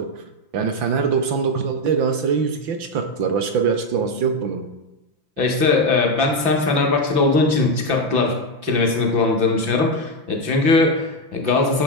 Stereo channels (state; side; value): late; left; 5.9 ms